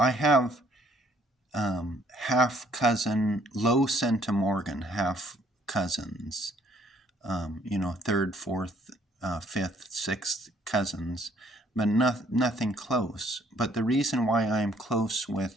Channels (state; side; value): normal; both; correlation 0.63